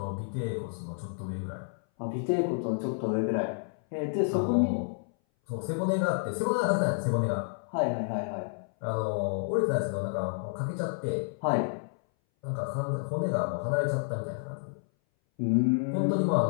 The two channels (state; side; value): silent; right; 58 dB below the other